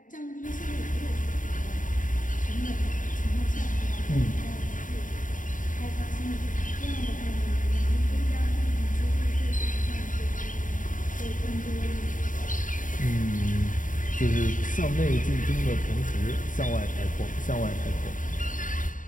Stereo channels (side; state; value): right; late; 0.38 ms